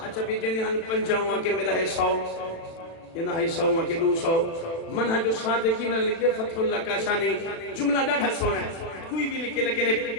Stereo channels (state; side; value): late; right; 36 ms